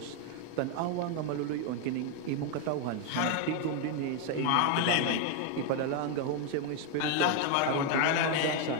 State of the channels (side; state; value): both; different; correlation 0.01